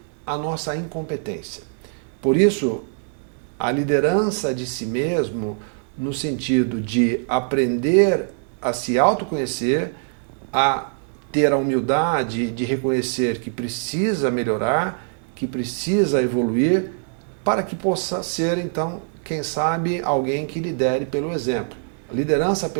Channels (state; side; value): silent; left; digital silence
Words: a nossa incompetência. Por isso, a liderança de si mesmo, no sentido de aprender a se autoconhecer, a ter a humildade de reconhecer que precisa melhorar, que precisa evoluir, para que possa ser, então, quem sabe, alguém que lidere pelo exemplo. A liderança